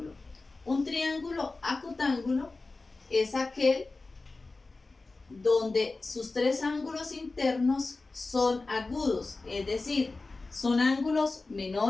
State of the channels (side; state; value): right; quieter; 3.5 dB